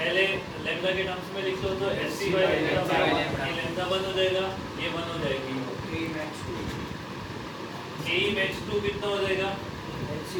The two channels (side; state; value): both; identical; correlation 1.00